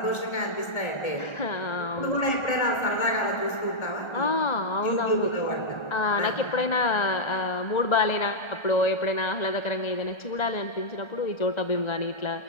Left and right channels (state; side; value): late; right; 1.3 ms